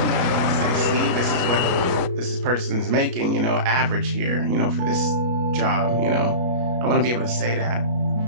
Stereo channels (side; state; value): left; late; 33 ms